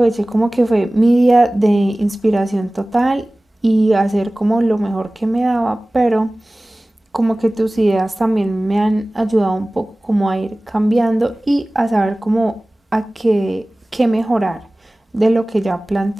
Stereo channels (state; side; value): normal; both; correlation 0.98